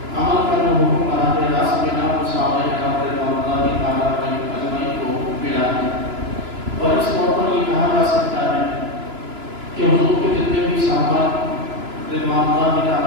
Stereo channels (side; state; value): left; late; 2.9 ms